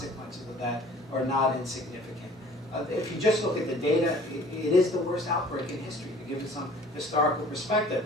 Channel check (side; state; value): both; normal; correlation 0.50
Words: of that are not insignificant. If you just look at the data, it is the worst outbreak in history, to give it some historical